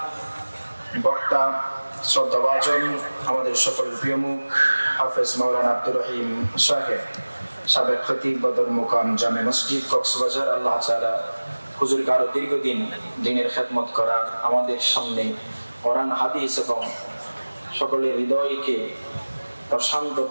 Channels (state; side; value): inverted; both; correlation -1.00